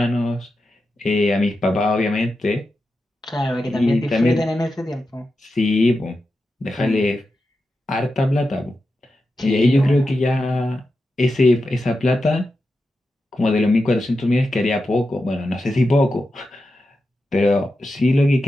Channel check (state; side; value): normal; both; correlation 0.90